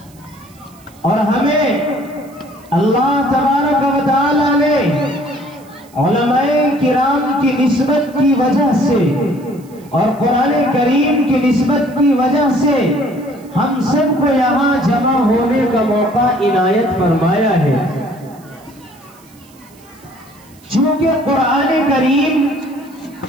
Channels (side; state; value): right; noise; hiss, 28 dB below the sound